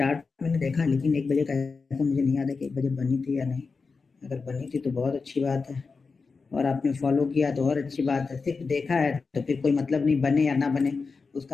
मैंने देखा लेकिन 1 बजे का ऐसा मुझे नहीं याद है कि 1 बजे बनी थी या नहीं। अगर बनी थी तो बहुत अच्छी बात है और आपने फॉलो किया तो और अच्छी बात है। सिर्फ देखा है तो फिर कोई मतलब नहीं, बने या ना बने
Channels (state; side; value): quieter; right; 4.6 dB